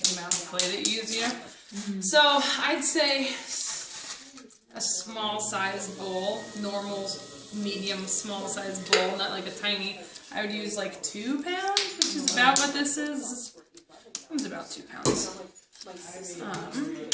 the amount of clay that you use, you know? So, I'd say a small size bowl, normal, medium, small size bowl, not like a tiny. I would use like 2 pounds, which is about what this is. It's about 2 pounds.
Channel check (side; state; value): both; identical; correlation 1.00